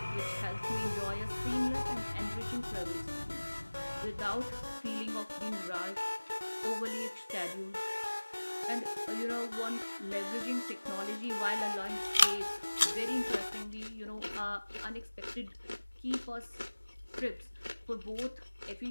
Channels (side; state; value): both; inverted; correlation -1.00